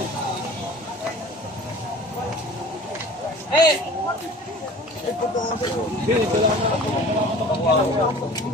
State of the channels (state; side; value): normal; both; correlation 0.43